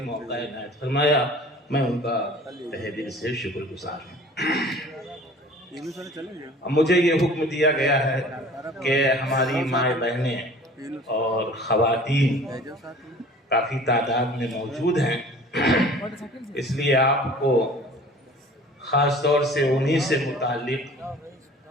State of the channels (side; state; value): both; normal; correlation 0.46